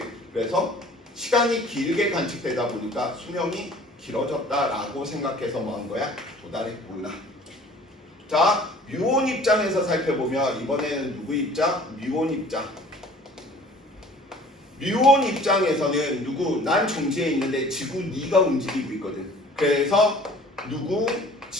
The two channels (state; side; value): normal; both; correlation 0.49